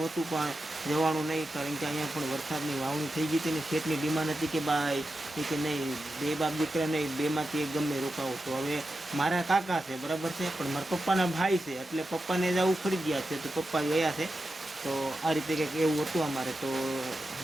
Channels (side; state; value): both; normal; correlation 0.90